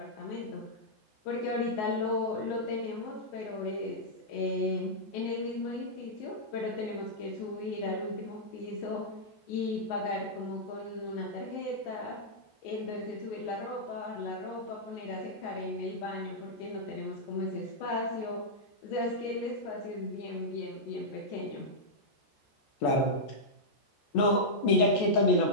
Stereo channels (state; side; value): late; right; 14 ms